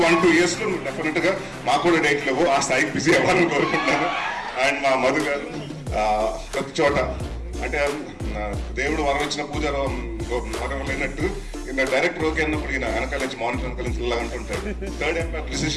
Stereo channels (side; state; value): both; identical; correlation 1.00